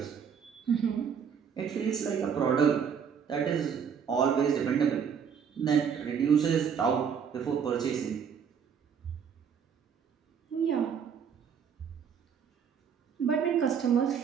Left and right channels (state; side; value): quieter; left; 7.2 dB